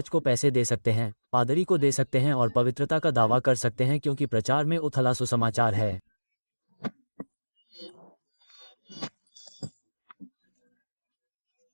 को पैसे दे सकते हैं, पादरी को दे सकते हैं और पवित्रता का दावा कर सकते हैं क्योंकि प्रचार में उथला सुसमाचार है।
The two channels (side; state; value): both; inverted; correlation -1.00